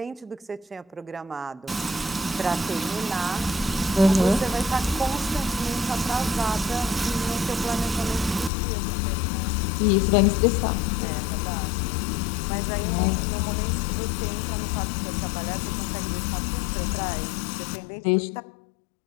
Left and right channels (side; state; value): right; drops out; at 8.5 s